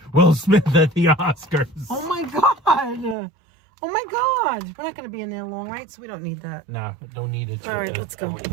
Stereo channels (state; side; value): drops out; left; at 3.2 s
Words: Will Smith at the Oscars. Oh my God. Oh my God. We're not going to be in there long, right? So we don't need that. Nah, don't need it. All right, let's go.